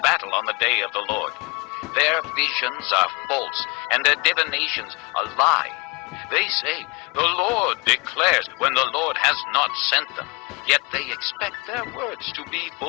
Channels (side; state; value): right; quieter; 28.4 dB